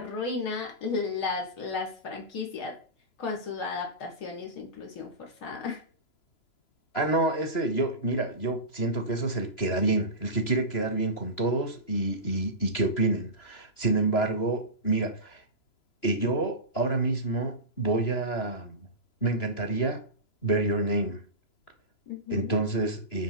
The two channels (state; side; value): late; right; 3.0 ms